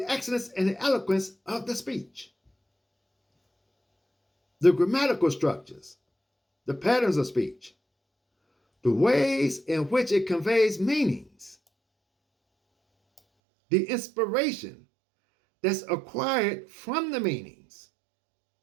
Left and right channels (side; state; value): left; drops out; at 13.2 s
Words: excellence and the eloquence of the speech. The grammatical structures, the patterns of speech, the ways in which it conveys meanings, the inspiration that's acquired from the meanings.